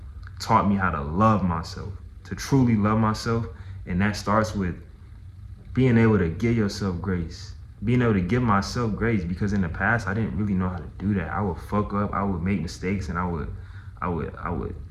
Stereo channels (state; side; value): identical; both; correlation 1.00